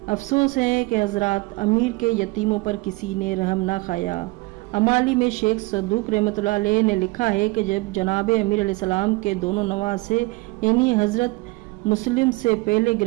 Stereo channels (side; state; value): left; quieter; 23.9 dB